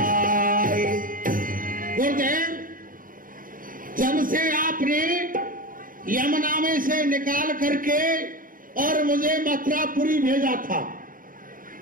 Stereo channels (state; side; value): late; left; 0.40 ms